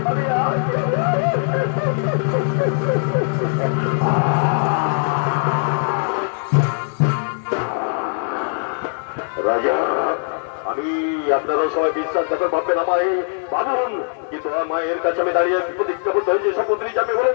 রাজা, আমি আপনারা সবাই বিশ্বাসঘাতক ভাববেন আমায়, ভাবুন, কিন্তু আমার মায়ের কাছে আমি দাঁড়িয়ে প্রতিজ্ঞাবদ্ধ হয়েছি শপথ নিয়ে যাবে বলেন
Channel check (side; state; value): right; silent; 63 dB below the other